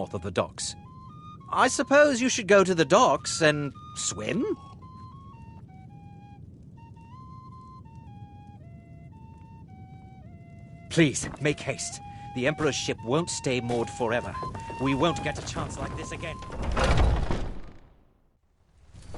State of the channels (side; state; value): both; identical; correlation 1.00